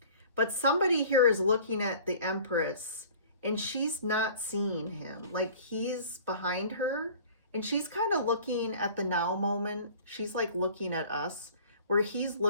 But somebody here is looking at the Empress and she's not seeing him. Like, he's behind her and she's kind of looking at the now moment. She's like looking at us where he's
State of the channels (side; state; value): both; inverted; correlation -0.47